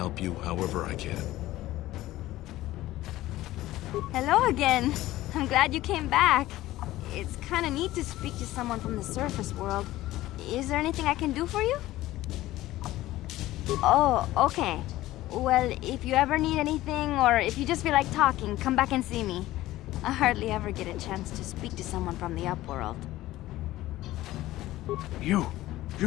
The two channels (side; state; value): right; quieter; 16.1 dB